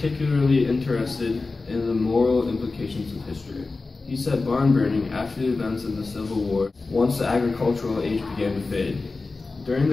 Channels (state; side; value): quieter; right; 3.7 dB